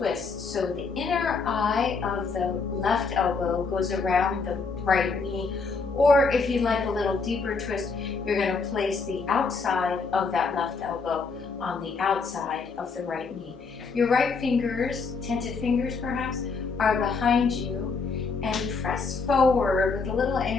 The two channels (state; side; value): quieter; right; 4.6 dB